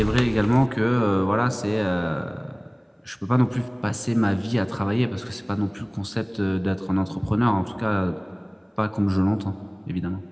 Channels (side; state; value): both; identical; correlation 1.00